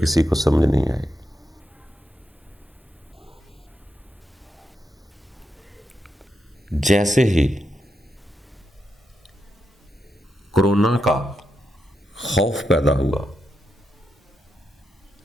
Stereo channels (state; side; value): normal; both; correlation 0.85